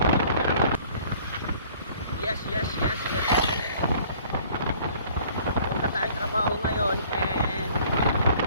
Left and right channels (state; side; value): inverted; both; correlation -0.54